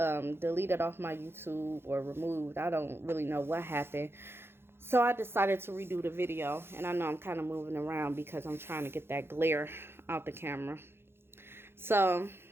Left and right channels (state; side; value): late; left; 0.11 ms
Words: off my YouTube or removed. I don't really know what happened. So I decided to redo the video, and I know I'm kind of moving around because I'm trying to get that glare out the camera. So,